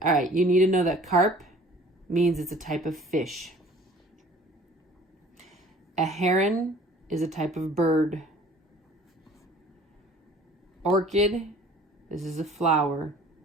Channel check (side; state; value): both; normal; correlation 0.50